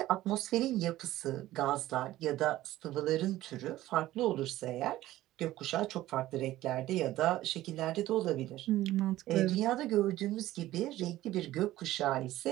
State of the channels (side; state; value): left; quieter; 15.4 dB